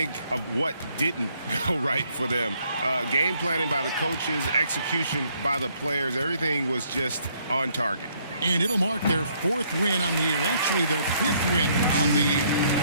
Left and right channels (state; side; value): inverted; both; correlation -0.67